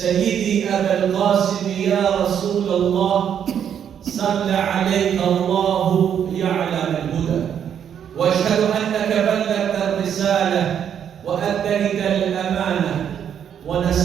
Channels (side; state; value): left; quieter; 8.7 dB